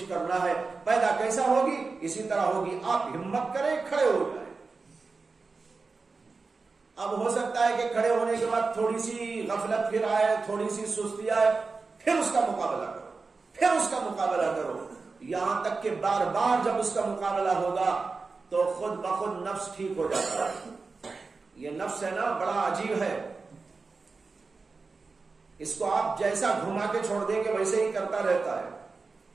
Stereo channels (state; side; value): quieter; left; 4.2 dB